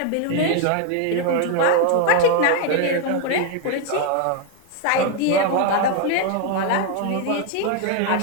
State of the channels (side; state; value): both; different; correlation 0.01